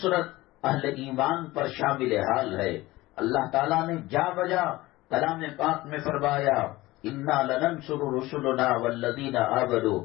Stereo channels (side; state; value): right; quieter; 18.8 dB